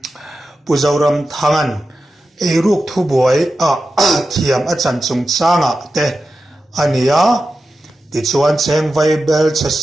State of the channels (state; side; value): normal; both; correlation 0.92